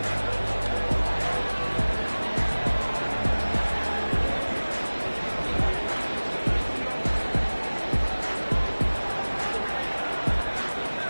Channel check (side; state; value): both; inverted; correlation -1.00